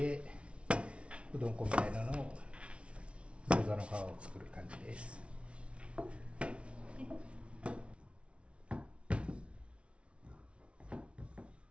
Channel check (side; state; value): left; late; 0.060 ms